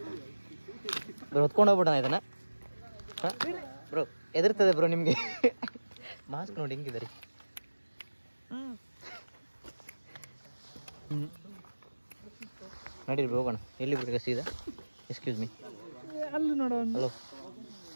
ಬ್ರೋ ಹೊತ್ಕೊಂಡು ಹೋಗ್ಬಿಡೋಣ ಇದನ್ನ. ಹಾಂ ಬ್ರೋ, ಎದುರ್ತದೆ ಬ್ರೋ ನಿಮಗೆ. ಮಾಸ್ಕ್ ನೋಡಿ ಹೆಂಗಿದೆ ರೀ. ನಡೀರಿ ಹೋಗೋಣ. ಎಲ್ಲಿ ಬಿಡ್ಬೇಕು ಸೀದಾ? Excuse me. ಅಲ್ಲಿ ನೋಡೋಣ. ಹಲೋ,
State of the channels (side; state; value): both; inverted; correlation -1.00